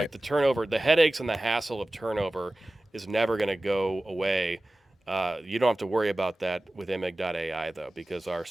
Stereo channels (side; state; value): both; normal; correlation 0.97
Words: the turnover, the headaches and the hassle of turnover is never going to go away. You don't have to worry about that with Imig.ai though, because our